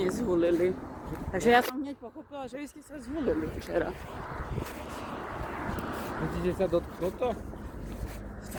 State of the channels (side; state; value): both; identical; correlation 1.00